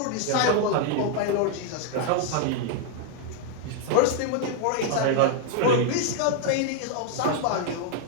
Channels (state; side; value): different; both; correlation 0.00